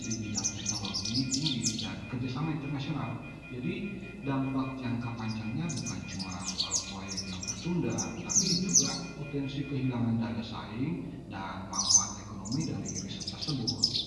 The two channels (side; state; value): both; identical; correlation 1.00